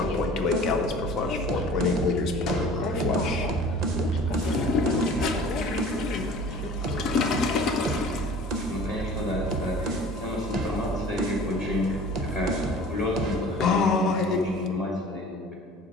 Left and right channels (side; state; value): both; normal; correlation 0.44